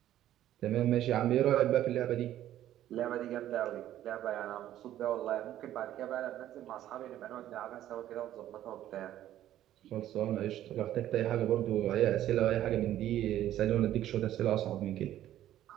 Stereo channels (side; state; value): left; quieter; 12.5 dB